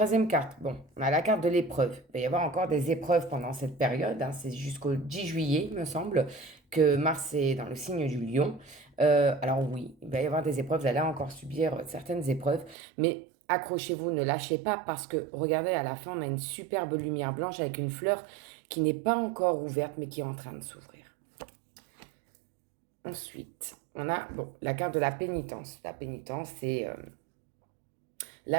carte, bon, on a la carte de l'épreuve. Il va y avoir encore des épreuves pendant cette période. C'est jusqu'au 10 juillet, il me semble, que Mars est dans le signe du Lion. Alors oui, il va y avoir des épreuves. Vous allez encore subir certaines épreuves. Mais accrochez-vous, ne lâchez pas parce que, regardez, à la fin, on a une superbe lumière blanche avec une fleur qui n'est pas encore ouverte, mais qui est en train de s'ouvrir. Ensuite, on a bon, la carte de la pénitence. La pénitence,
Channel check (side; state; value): left; drops out; at 12.8 s